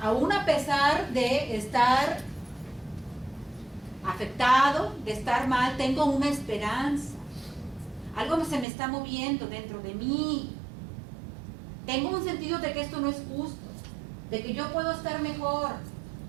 Aún a pesar de estar afectado, de estar mal, tengo una esperanza. Algo se me está moviendo dentro de mí. Tengo un sentido de que esto no es justo, de que yo puedo estar mejor.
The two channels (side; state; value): left; drops out; at 8.7 s